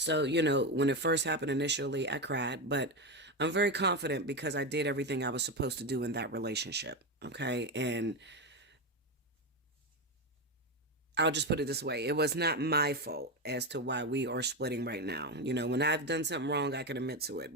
you know, when it first happened initially, I cried, but I'm very confident because I did everything I was supposed to do in that relationship, okay? And I'll just put it this way. It was not my fault as to why we are splitting right now. You know, when I've done something wrong, I can admit to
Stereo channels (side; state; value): both; normal; correlation 0.13